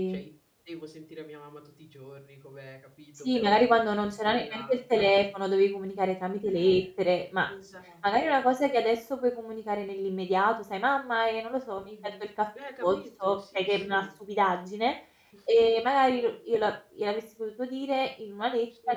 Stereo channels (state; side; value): identical; both; correlation 1.00